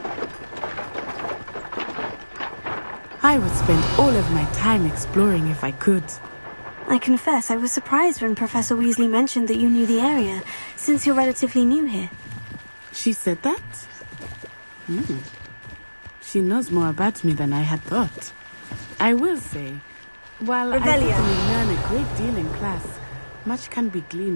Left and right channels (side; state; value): both; inverted; correlation -1.00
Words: I would spend all of my time exploring if I could. I confess I was surprised when Professor Weasley mentioned that you knew the area, since you're relatively new here. She said that? She knows more about me than I had thought. I will say, while I Revelio. certainly learn a great deal in class, much can be